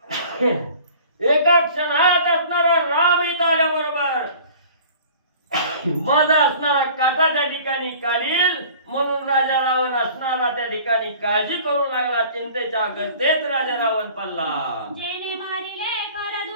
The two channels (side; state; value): both; inverted; correlation -0.47